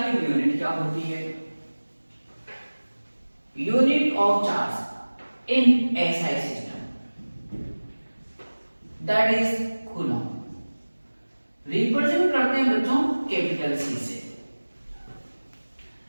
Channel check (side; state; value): both; inverted; correlation -1.00